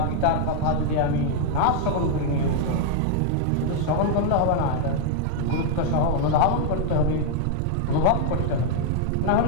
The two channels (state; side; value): different; both; correlation -0.01